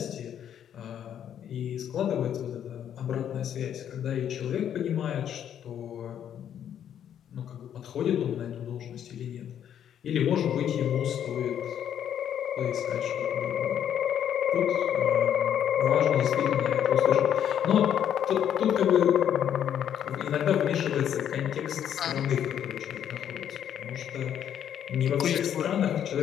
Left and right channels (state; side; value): quieter; right; 9.6 dB